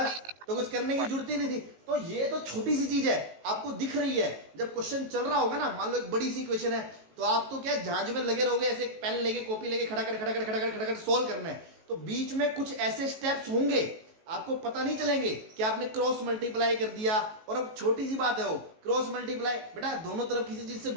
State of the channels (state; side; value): late; left; 18 ms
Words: तो कुछ करने की जरूरत ही नहीं थी। तो ये तो छोटी सी चीज है, आपको दिख रही है। जब क्वेश्चन चल रहा होगा ना, मान लो एक बड़ी सी क्वेश्चन है, तो आप तो क्या झांझ में लगे रहोगे, ऐसे पेन लेके कॉपी लेके खड़ा कर सॉल्व करना है। तो बीच में कुछ ऐसे स्टेप्स होंगे आपको पता नहीं चलेंगे कि आपने क्रॉस मल्टीप्लाई कर दिया। और अब छोटी सी बात है वो क्रॉस मल्टीप्लाई, बेटा दोनों तरफ किसी चीज से